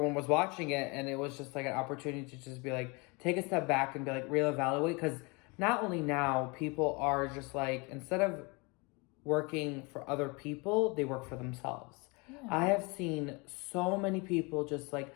was watching it, and it was just like an opportunity to just be like, take a step back and be like, reevaluate, because not only now people are just like, instead of working for other people, they work for themselves. Yeah. I have seen so many people just like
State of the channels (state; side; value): quieter; right; 28.4 dB